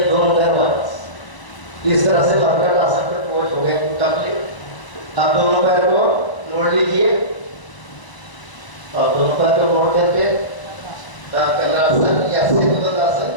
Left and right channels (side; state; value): right; late; 1.0 ms